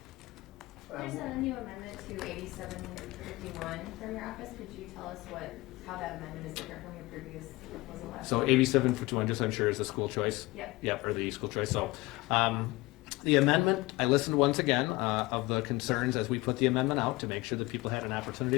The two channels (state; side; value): quieter; right; 21.0 dB